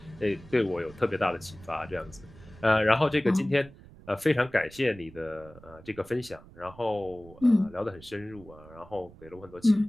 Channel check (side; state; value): right; noise; rumble, 21 dB below the sound